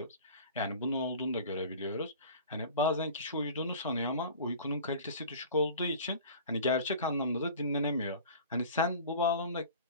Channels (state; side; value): inverted; both; correlation -0.41